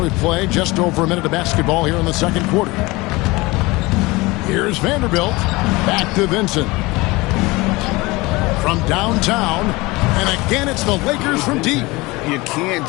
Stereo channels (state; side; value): quieter; right; 22.5 dB